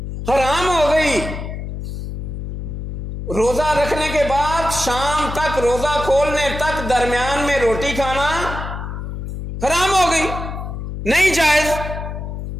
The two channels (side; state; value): left; noise; hum, 7 dB below the sound